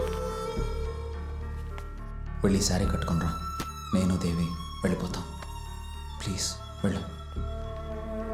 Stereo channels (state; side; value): identical; both; correlation 1.00